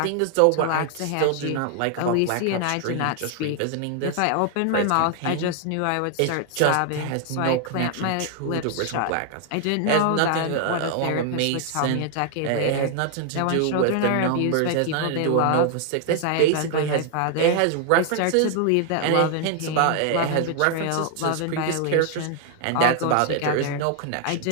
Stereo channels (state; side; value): different; both; correlation 0.00